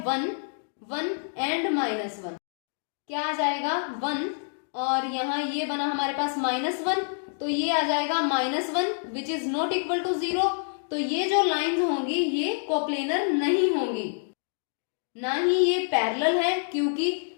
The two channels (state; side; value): silent; right; digital silence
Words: 1 1 एंड माइनस 1, क्या आ जाएगा 1 और यहाँ ये बना हमारे पास माइनस 1, तो ये आ जाएगा minus 1 which is not equal to 0। तो ये जो लाइंस होंगी ये कोप्लेनर नहीं होंगी, ना ही ये पैरेलल है क्योंकि